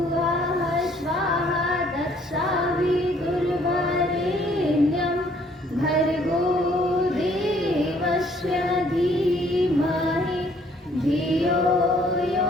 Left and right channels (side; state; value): both; normal; correlation 0.62